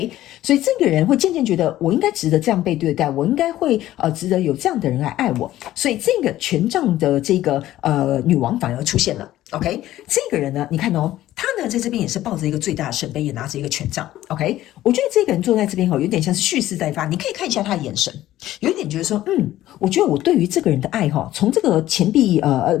所以这个人会渐渐觉得我应该值得这样被对待，我应该会值得有这样的人来爱我，所以这个权杖的这个女王反而出现了。OK， 这个人呢，你看哦，他呢在这边也是抱着一个最大的圣杯，也拿着一个权杖。OK， 我觉得这个人坐在这边有点像是蓄势待发，你可以看一下他的眼神，有一点觉得说，我觉得我对于这个人的爱从这个钱币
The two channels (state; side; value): quieter; right; 14.3 dB